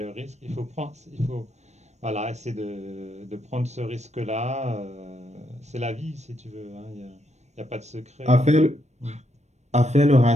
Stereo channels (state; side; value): late; left; 0.33 ms